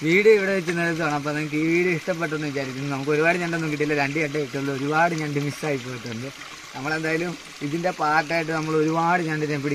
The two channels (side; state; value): both; identical; correlation 1.00